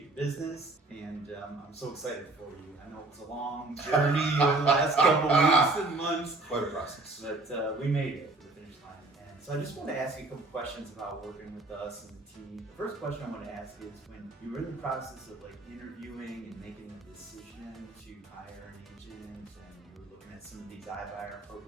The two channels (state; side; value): quieter; left; 3.1 dB